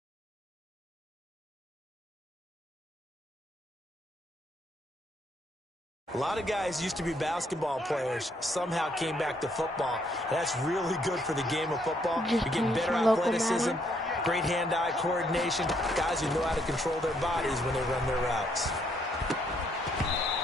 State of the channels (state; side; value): normal; both; correlation 0.71